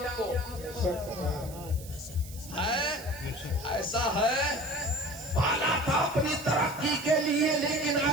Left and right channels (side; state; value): right; noise; hiss, 17 dB below the sound